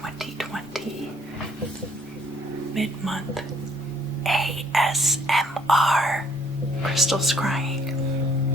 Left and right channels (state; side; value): normal; both; correlation 0.64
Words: mid-month ASMR crystal scrying.